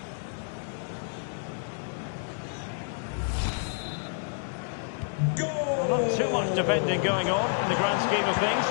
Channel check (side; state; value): right; silent; digital silence